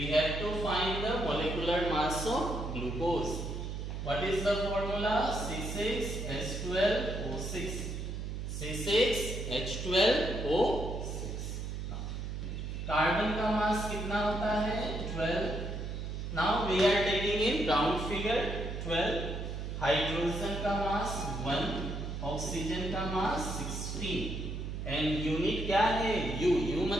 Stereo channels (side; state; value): right; noise; hum, 5 dB below the sound